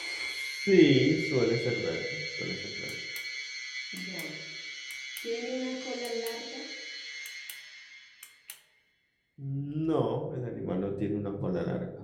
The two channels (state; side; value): identical; both; correlation 1.00